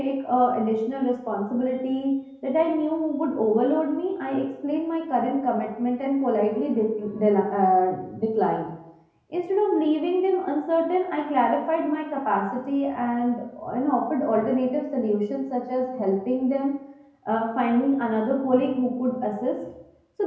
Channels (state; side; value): identical; both; correlation 1.00